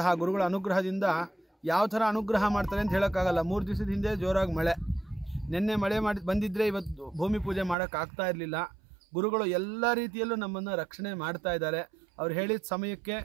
ಗುರುಗಳ ಅನುಗ್ರಹದಿಂದ ಯಾವ ಥರ ಅನುಗ್ರಹ ಮಾಡ್ತಾರೆ ಅಂತ ಹೇಳೋಕ್ಕಾಗಲ್ಲ. 3 ದಿವಸದ ಹಿಂದೆ ಜೋರಾಗಿ ಮಳೆ, ನಿನ್ನೆ ಮಳೆ ಬಂದಿದ್ದರೆ ಇವತ್ತು ಭೂಮಿ ಪೂಜೆ ಮಾಡೋಕ್ಕಾಗ್ತಾ ಇರಲಿಲ್ಲ. ಗುರುಗಳು ಎಲ್ಲ ರೀತಿಯಲ್ಲೂ ನಮ್ಮನ್ನು ರಕ್ಷಣೆ ಮಾಡ್ತಾ ಇದ್ದಾರೆ. ಅವ್ರು ಹೇಳಿದ ಸಮಯಕ್ಕೆ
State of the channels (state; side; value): drops out; left; at 7.8 s